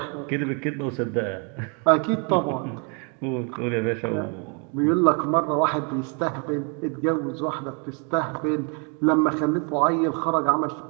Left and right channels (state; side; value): quieter; left; 36.6 dB